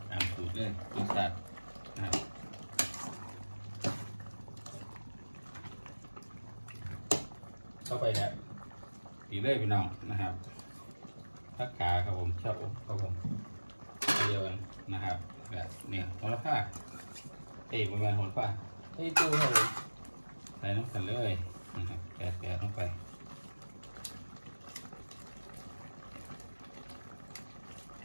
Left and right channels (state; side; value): inverted; both; correlation -1.00